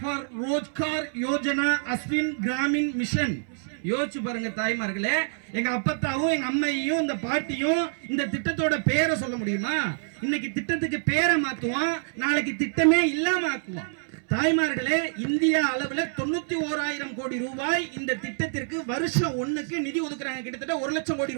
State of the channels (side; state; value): left; silent; 60 dB below the other